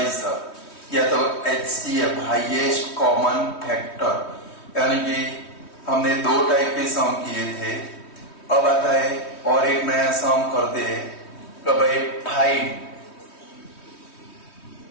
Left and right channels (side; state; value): right; late; 3.2 ms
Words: या तो HCF हाईएस्ट कॉमन फैक्टर। यानी कि हमने दो टाइप के सम किए थे। अब आता है और एक नया सम करते हैं कि भाई find